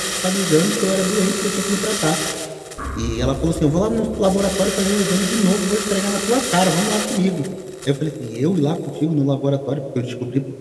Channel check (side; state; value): both; identical; correlation 1.00